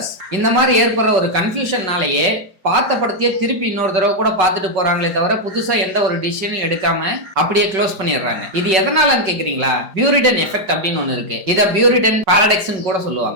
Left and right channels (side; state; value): left; late; 4.9 ms